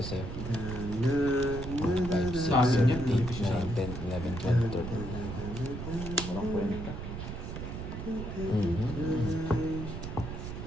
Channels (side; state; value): right; noise; rumble, 7 dB below the sound